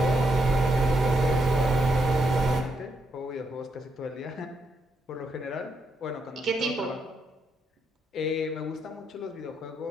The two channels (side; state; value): both; normal; correlation 0.79